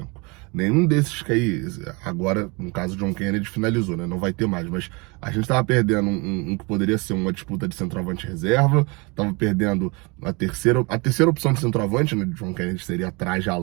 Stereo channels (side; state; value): left; quieter; 28.6 dB